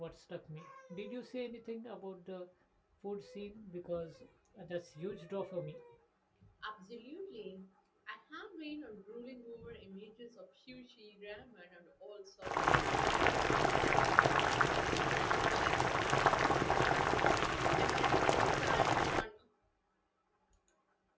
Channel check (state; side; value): identical; both; correlation 1.00